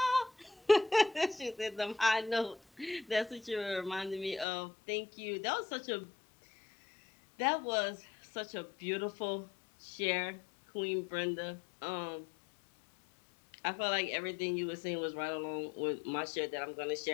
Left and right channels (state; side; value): drops out; right; at 4.5 s